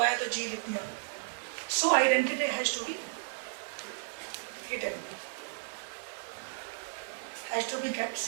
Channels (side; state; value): left; silent; digital silence